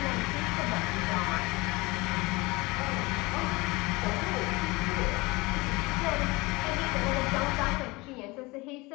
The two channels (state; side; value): quieter; right; 23.6 dB